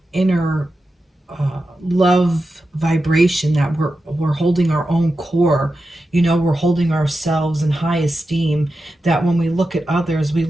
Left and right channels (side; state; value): both; normal; correlation 0.91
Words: inner love vibration, that we're holding our own core, you know, we're holding ourselves in high esteem, that when we look at others, we